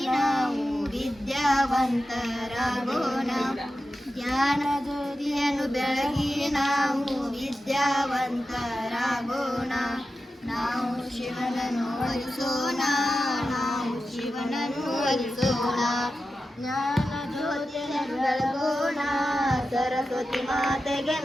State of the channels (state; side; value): normal; both; correlation 0.92